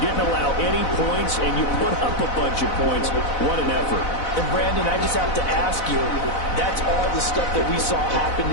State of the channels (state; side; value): late; right; 4.0 ms